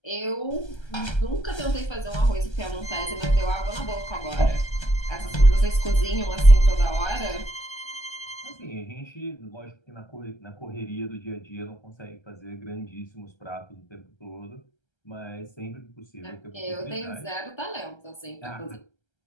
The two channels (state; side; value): late; right; 1.3 ms